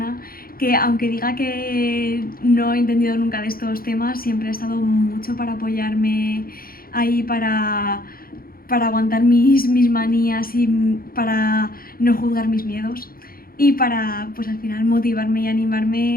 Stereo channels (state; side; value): late; right; 0.42 ms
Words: que, aunque diga que no he entendido nunca de estos temas, siempre ha estado mucho para apoyarme ahí, para aguantar mis manías y para no juzgar mis miedos, y para pues al final motivarme y